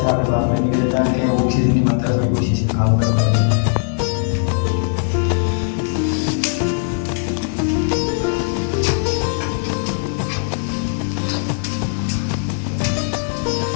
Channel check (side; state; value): right; silent; 66 dB below the other